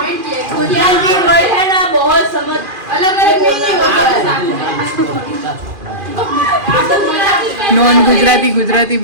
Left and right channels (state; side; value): late; left; 2.4 ms